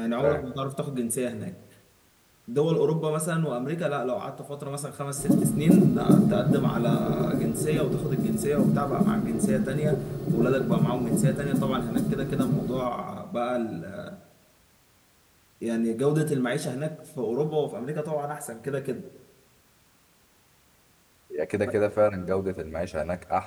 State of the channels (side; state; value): both; identical; correlation 1.00